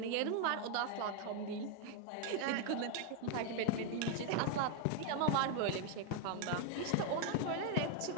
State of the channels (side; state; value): both; different; correlation 0.01